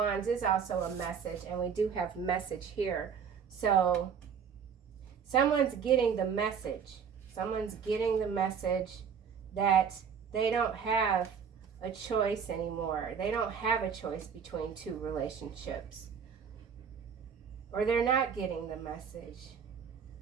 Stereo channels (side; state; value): left; quieter; 6.9 dB